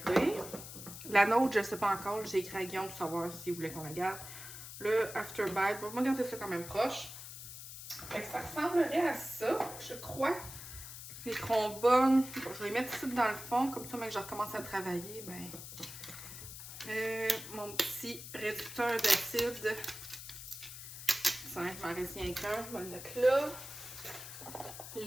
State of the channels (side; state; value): left; noise; hiss, 11 dB below the sound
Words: La nôtre, je ne sais pas encore. J'ai écrit à Guillaume pour savoir s'il voulait qu'on la garde. Le Afterbite, on va garder ça quand même proche. Fait que ça ressemblerait à ça, je crois. Les trombones, bon, je vais les mettre ici dans le fond, comme ça, mais que je recommence à travailler, ben... mon petit réducteur d'acide. Ça m'en reste rien qu'un. Je vais le mettre là.